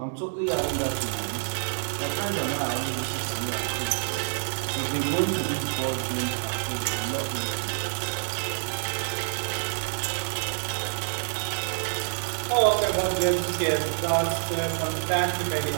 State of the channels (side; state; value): left; silent; digital silence